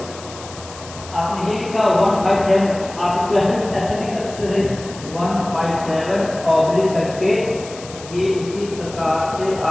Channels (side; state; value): left; noise; hiss, 16 dB below the sound